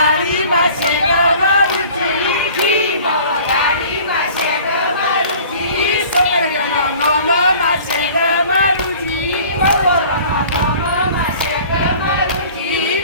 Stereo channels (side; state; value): both; inverted; correlation -0.47